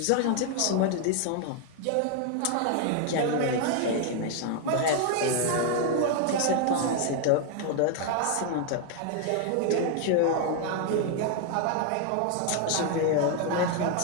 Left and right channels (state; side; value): different; both; correlation 0.00